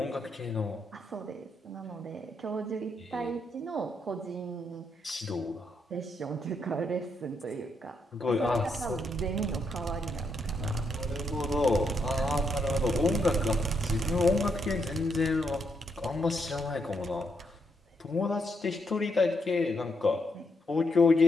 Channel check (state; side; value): normal; both; correlation 0.78